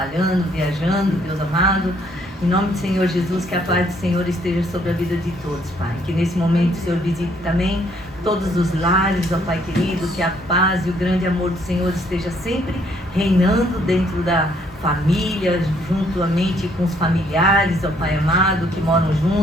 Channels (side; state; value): both; normal; correlation 0.67